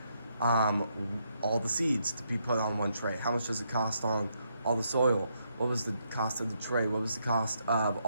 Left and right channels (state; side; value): inverted; both; correlation -0.77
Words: all the seeds to be put on one tray? How much does it cost on all the soil? What was the cost of the tray? What was the cost of